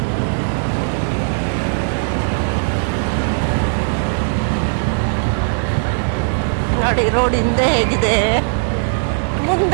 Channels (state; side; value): silent; left; digital silence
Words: ನೋಡಿ ರೋಡ್ ಹಿಂದೆ ಹೇಗಿದೆ,